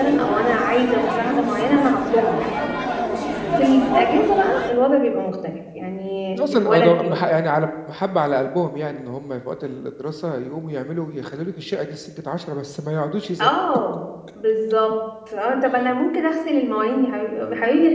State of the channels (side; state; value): both; identical; correlation 1.00